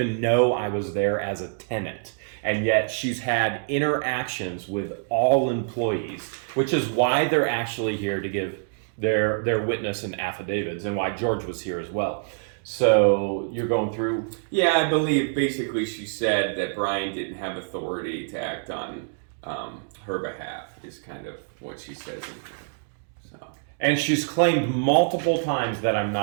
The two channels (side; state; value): left; silent; digital silence